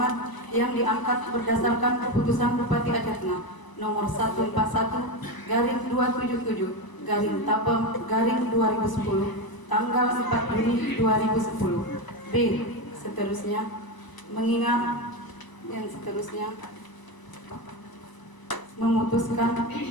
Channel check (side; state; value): right; late; 1.0 ms